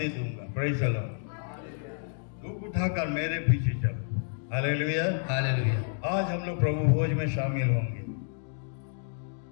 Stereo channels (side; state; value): right; silent; digital silence